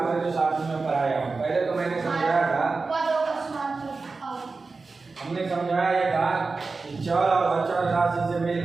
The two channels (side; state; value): left; quieter; 4.0 dB